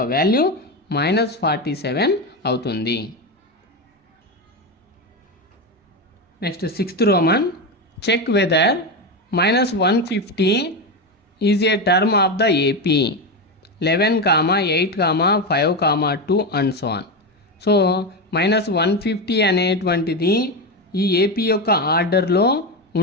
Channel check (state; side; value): normal; both; correlation 0.15